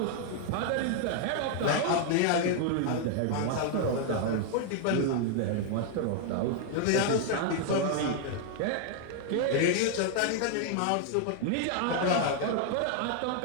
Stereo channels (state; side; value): different; both; correlation 0.00